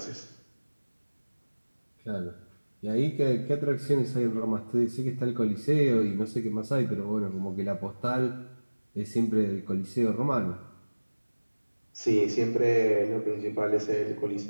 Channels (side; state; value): both; inverted; correlation -1.00